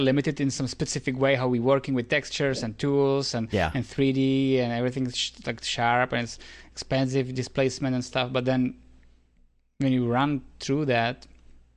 in some specific way how we're working with textures and tools and 3D and everything's like sharp, and it's expensive displacement and stuff. But then when you run through that,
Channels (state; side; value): identical; both; correlation 1.00